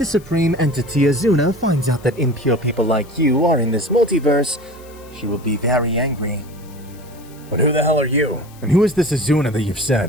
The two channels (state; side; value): noise; left; hiss, 25 dB below the sound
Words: supreme entity Azuna finds out that impure people like you are in this multiverse, she will be very angry." But who the hell are you? And who is this Azuna that you've